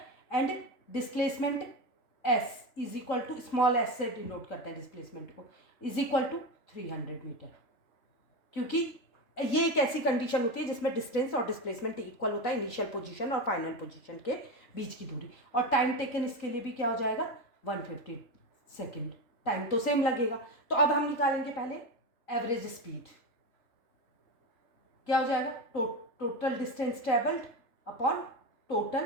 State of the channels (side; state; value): right; late; 3.4 ms